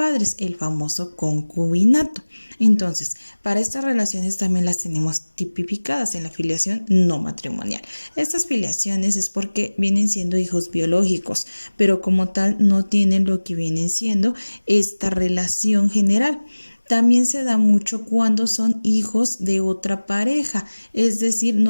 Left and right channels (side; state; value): both; inverted; correlation -1.00